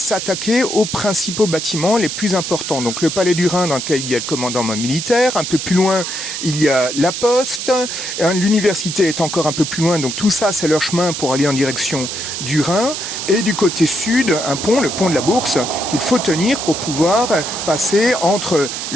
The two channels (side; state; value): right; noise; hiss, 5 dB below the sound